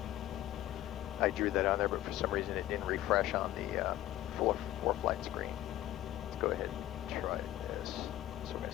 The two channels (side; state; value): right; quieter; 14.1 dB